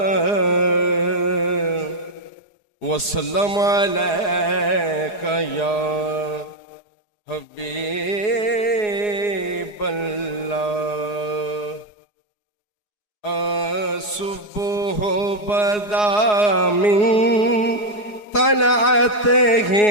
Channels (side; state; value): right; late; 4.8 ms